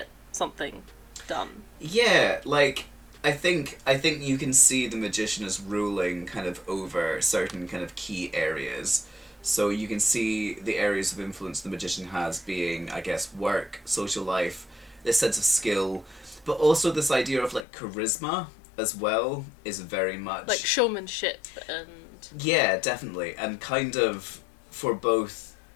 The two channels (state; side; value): drops out; right; at 17.7 s